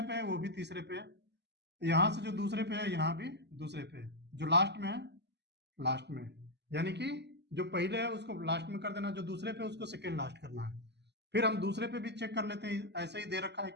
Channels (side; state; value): left; late; 0.50 ms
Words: पे है वो भी तीसरे पे है, यहाँ से जो दूसरे पे है यहाँ भी दूसरे पे है, जो लास्ट में है लास्ट में, यानी कि जो पहले है उसको लास्ट में कर देना, जो दूसरे पे उसको सेकेंड लास्ट करना है। फिर हम दूसरे पे भी चेक कर लेते हैं ऐसे ही दे रखा है